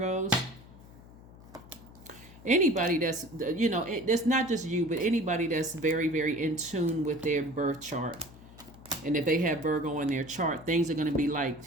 anybody that's, it's not just you, but anybody that's very, very in tune with their birth chart. And if they have Virgo in their chart, things are going to be like,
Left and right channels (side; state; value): left; noise; hum, 20 dB below the sound